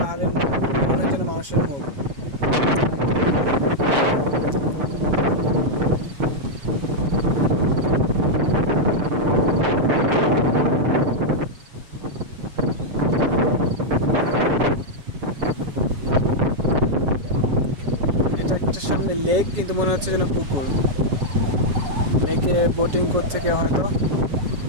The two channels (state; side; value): late; left; 7.1 ms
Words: মনে হয় যেন মানুষের মুখ। এটা একটা সামনে লেক, কিন্তু মনে হচ্ছে যেন পুকুর। লেকে বোটিং করছে কেউ হয়তো,